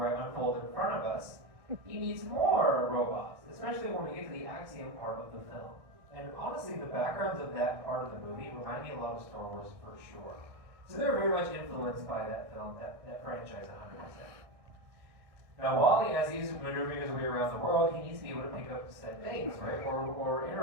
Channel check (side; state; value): left; late; 1.6 ms